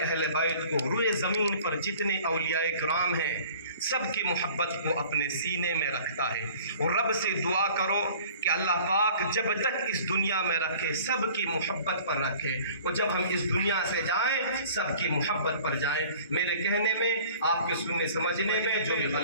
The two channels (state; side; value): inverted; both; correlation -0.48